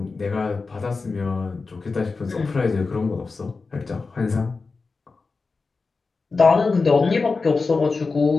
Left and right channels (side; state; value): right; quieter; 4.2 dB